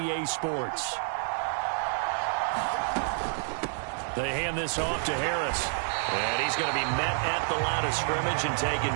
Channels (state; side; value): silent; left; 59 dB below the other